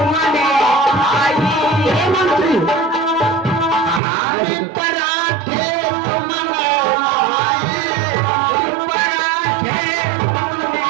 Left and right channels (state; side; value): drops out; left; at 4.0 s